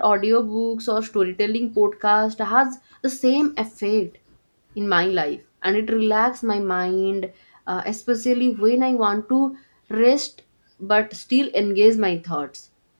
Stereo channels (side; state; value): both; inverted; correlation -1.00